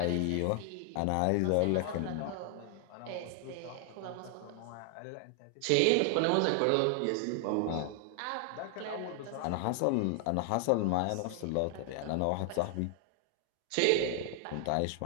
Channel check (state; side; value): different; both; correlation 0.00